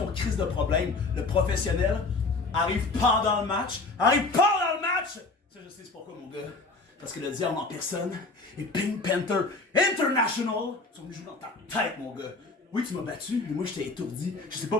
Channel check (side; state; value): right; quieter; 3.5 dB